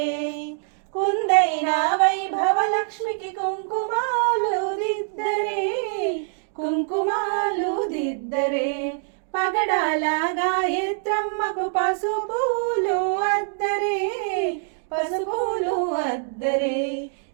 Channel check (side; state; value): left; silent; digital silence